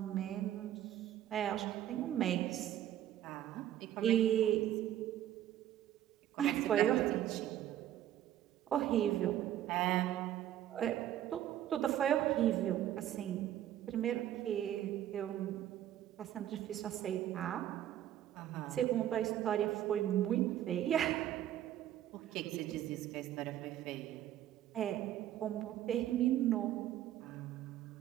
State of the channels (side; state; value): left; quieter; 12.0 dB